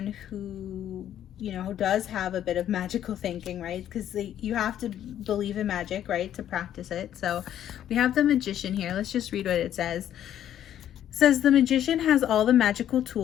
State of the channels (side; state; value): right; quieter; 10.9 dB